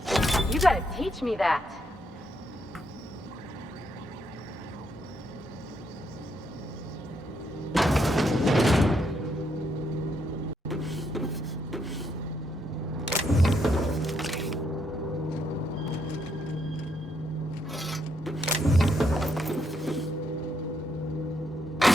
You gotta teach me that.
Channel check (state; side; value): normal; both; correlation 0.76